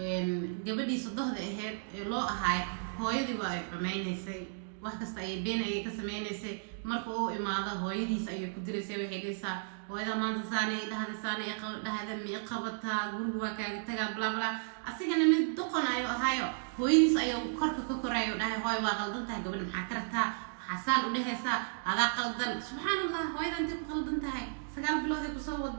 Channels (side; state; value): left; silent; digital silence